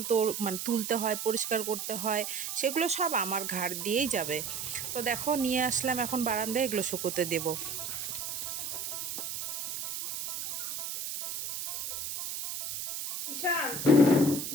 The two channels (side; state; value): right; noise; hiss, 5 dB below the sound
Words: তো মানে তুলতে হয়, পরিষ্কার করতে হয়, সেগুলো সব আমার ঘাড় দিয়েই যাবে। তো দেখো নিয়ে আসলাম এখন বারান্দায়, এগুলো শুকোতে দেবো। ঈশান,